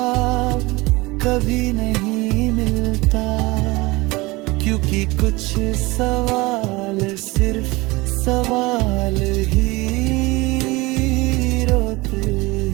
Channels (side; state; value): left; quieter; 22.6 dB